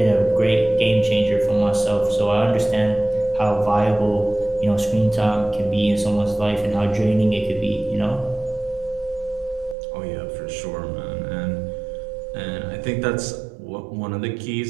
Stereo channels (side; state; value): left; drops out; at 9.8 s